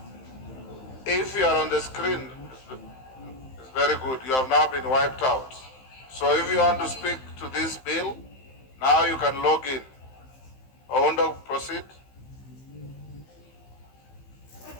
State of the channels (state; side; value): late; right; 15 ms